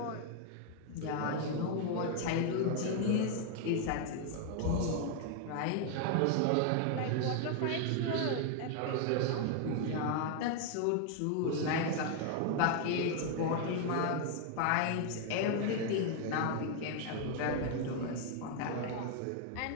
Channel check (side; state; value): both; different; correlation 0.00